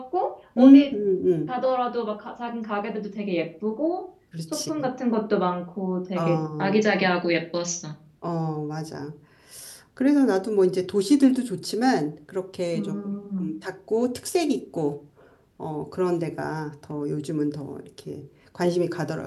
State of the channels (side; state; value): both; identical; correlation 1.00